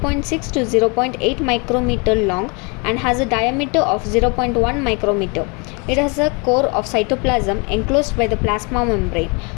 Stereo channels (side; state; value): right; quieter; 31.5 dB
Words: to 0.8 micrometer long and has a diameter of 0.1 micrometer. It has a core of cytoplasm enclosed by the plasma membrane.